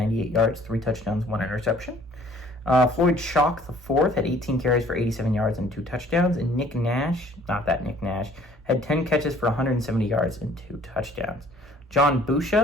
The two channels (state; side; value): normal; both; correlation 0.56